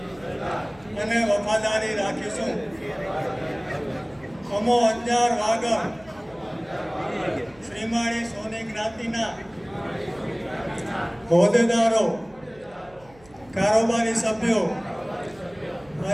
અને વફાદારી રાખીશું। અમો અંજાર વાગડ શ્રીમાળી સોની જ્ઞાતિના હોદ્દેદારો, કારોબારી સભ્યો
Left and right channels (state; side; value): noise; right; hum, 26 dB below the sound